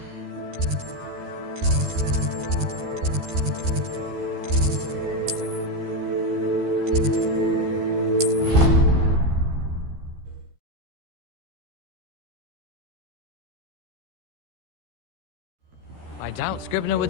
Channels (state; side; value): late; left; 13 ms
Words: I doubt Scribner would